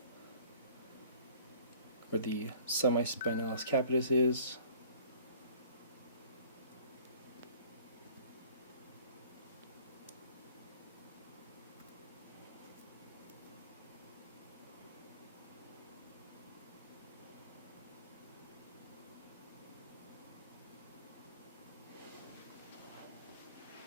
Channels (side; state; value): both; inverted; correlation -0.51